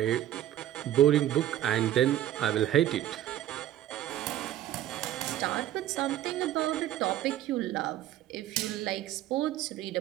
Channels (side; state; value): left; quieter; 12.6 dB